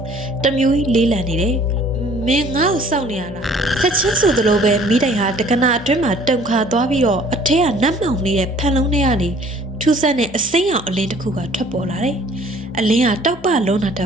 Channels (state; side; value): normal; both; correlation 0.55